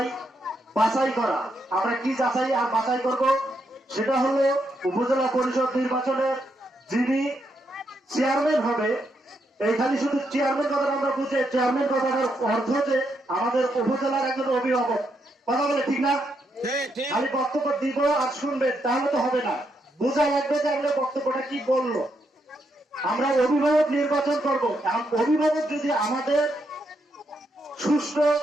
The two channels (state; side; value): normal; both; correlation 0.79